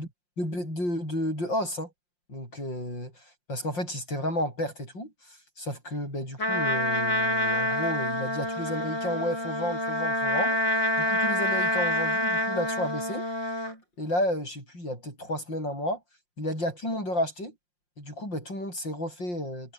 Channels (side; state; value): right; late; 5.7 ms